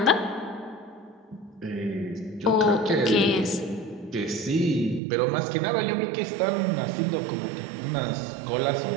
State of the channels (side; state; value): left; drops out; at 5.0 s